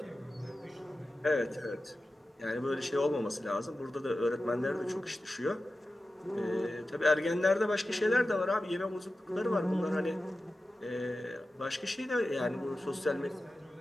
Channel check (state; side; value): normal; both; correlation 0.94